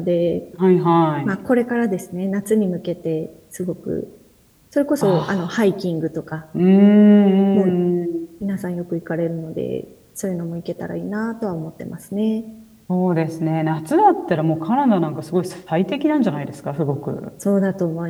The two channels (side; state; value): both; identical; correlation 1.00